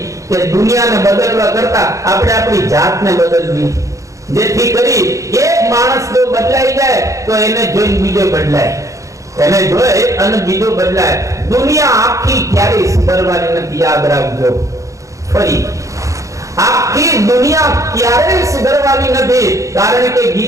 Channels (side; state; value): left; late; 0.15 ms